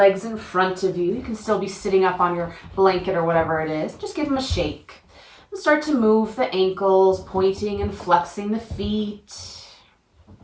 in front of you. You can still be sitting up on your blanket or whatever it is. Just give them a shake. And start to move the ankles, pointing and flexing the feet,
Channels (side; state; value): both; identical; correlation 1.00